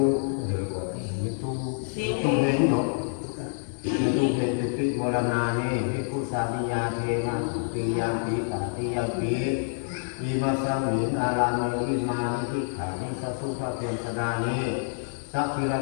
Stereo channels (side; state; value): right; silent; digital silence